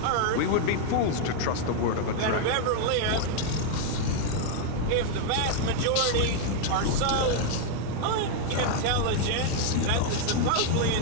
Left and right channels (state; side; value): different; both; correlation 0.00